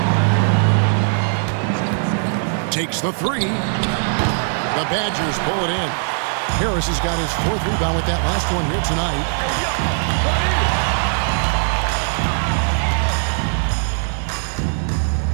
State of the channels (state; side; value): silent; left; digital silence